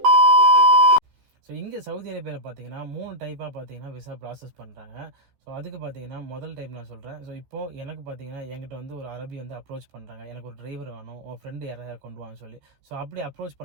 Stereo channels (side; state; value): left; late; 14 ms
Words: ஸோ இங்கே சவுதி அரேபியாவில் பார்த்தீங்கன்னா 3 டைப்பாக பார்த்தீங்கன்னா விசா ப்ராசஸ் பண்ணுறாங்க. ஸோ அதுக்கு பார்த்தீங்கன்னா முதல் டைப் நான் சொல்கிறேன். ஸோ இப்போது எனக்கு பார்த்தீங்கன்னா என்கிட்ட வந்து ஒரு அரபி வந்து அப்ரோச் பண்ணுறாங்க. எனக்கு ஒரு டிரைவர் வேணும், உன் ஃப்ரெண்டு யாராவது கொண்டு வான்னு சொல்லி. ஸோ அப்படி அப்ரோச்